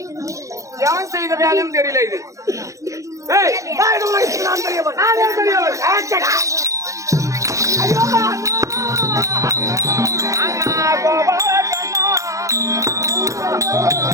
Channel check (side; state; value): left; late; 0.15 ms